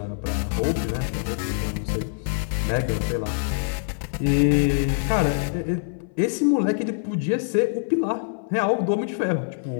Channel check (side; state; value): right; silent; 61 dB below the other